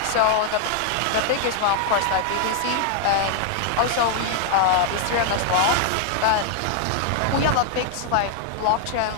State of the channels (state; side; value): different; both; correlation 0.00